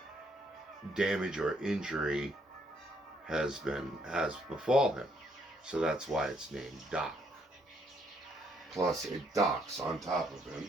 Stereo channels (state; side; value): normal; both; correlation 0.71